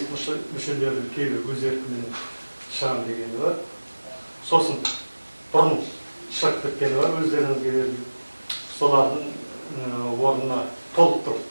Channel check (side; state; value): both; inverted; correlation -1.00